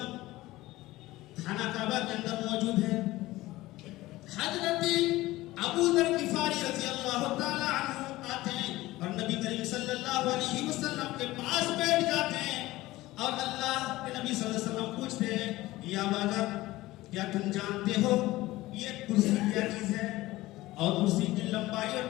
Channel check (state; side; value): quieter; right; 18.0 dB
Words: خانہ کعبہ کے اندر موجود ہے. حضرت ابو ذر غفاری رضی اللہ تعالی عنہ آتے ہیں اور نبی کریم صلی اللہ علیہ وسلم کے پاس بیٹھ جاتے ہیں اور اللہ کے نبی صلی اللہ علیہ وسلم پوچھتے ہیں، یا ابا ذر کیا تم جانتے ہو یہ کرسی کیا چیز ہے اور کرسی کی لمبائی اور